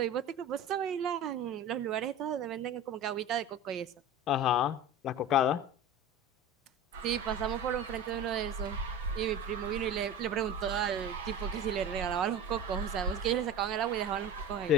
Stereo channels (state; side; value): normal; both; correlation 0.32